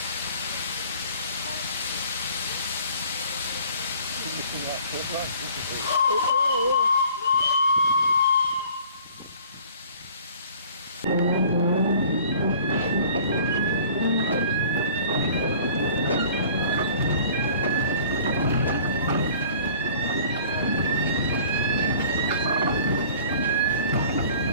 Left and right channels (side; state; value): both; inverted; correlation -0.50